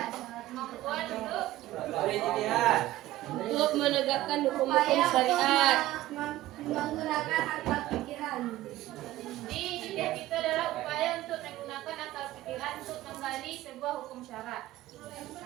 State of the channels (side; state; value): left; quieter; 15.6 dB